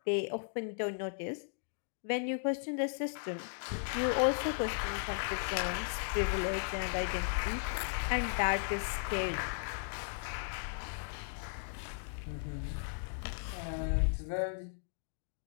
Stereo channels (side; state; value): right; silent; digital silence